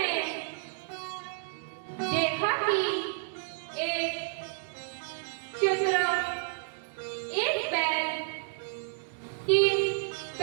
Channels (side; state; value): left; silent; digital silence